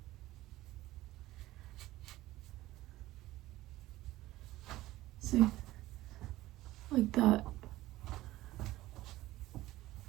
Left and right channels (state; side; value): quieter; left; 16.7 dB